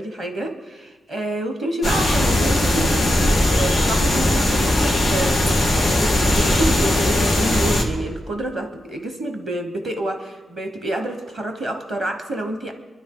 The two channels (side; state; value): both; normal; correlation 0.88